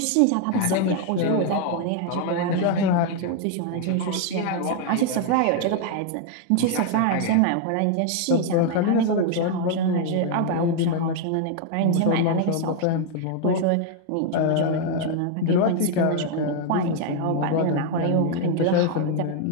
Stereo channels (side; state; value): both; different; correlation 0.00